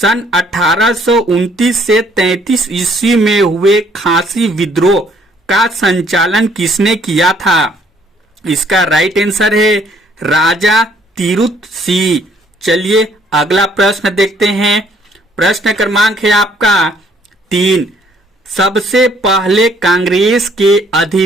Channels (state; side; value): normal; both; correlation 0.64